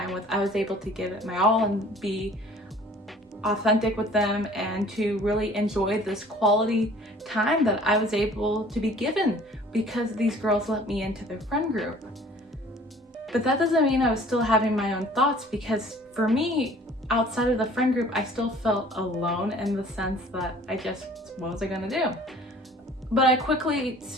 with, I was able to give it my all and be authentic with them and to really enjoy this quality time that I was able to be given because these girls let me into their friend group. But that doesn't mean I was still having my own thoughts, because for me, outside of the friend group, I still felt alone in the sense that what was I gonna do? But I quickly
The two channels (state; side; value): normal; both; correlation 0.51